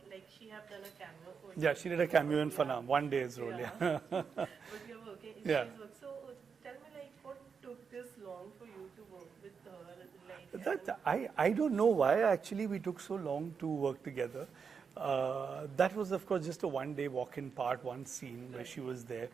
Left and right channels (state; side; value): quieter; left; 6.0 dB